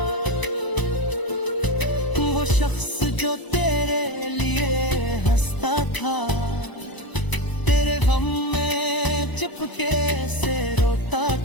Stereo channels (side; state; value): right; late; 1.0 ms